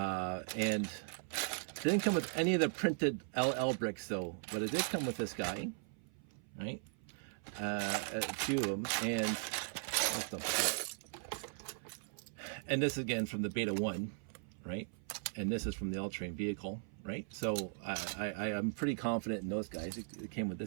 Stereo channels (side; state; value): left; silent; 52 dB below the other